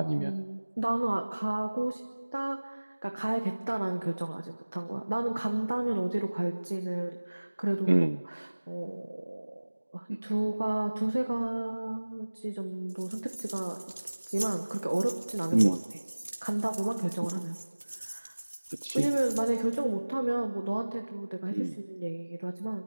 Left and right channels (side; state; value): both; inverted; correlation -1.00